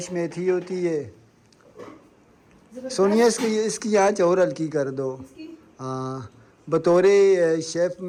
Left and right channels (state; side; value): identical; both; correlation 1.00